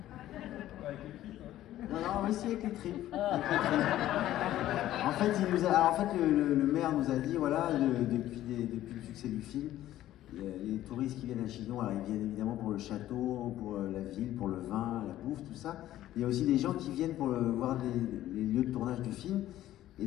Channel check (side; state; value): right; quieter; 13.6 dB